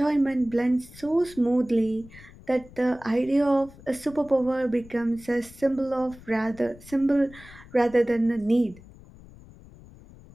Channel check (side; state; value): left; noise; rumble, 21 dB below the sound